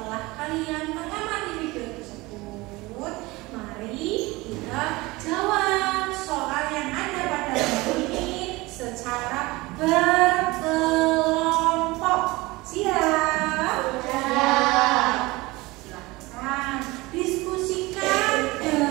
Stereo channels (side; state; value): left; quieter; 21.9 dB